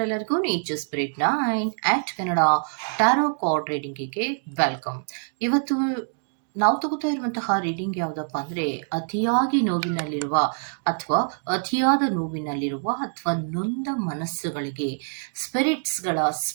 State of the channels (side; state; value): left; silent; digital silence